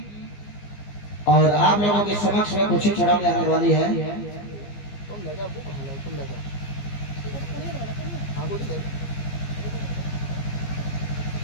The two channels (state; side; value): late; right; 15 ms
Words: और आप लोगों के समक्ष में कुछ ही क्षणों में आने वाली है।